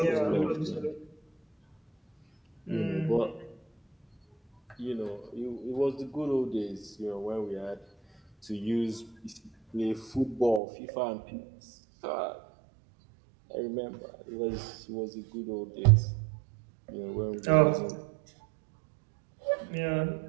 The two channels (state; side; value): drops out; left; at 10.6 s